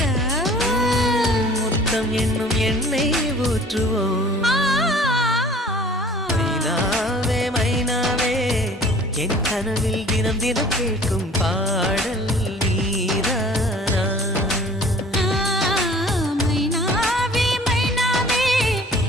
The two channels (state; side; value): normal; both; correlation 0.49